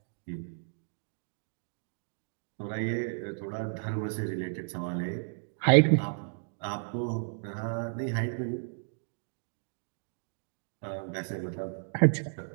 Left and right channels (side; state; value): left; silent; digital silence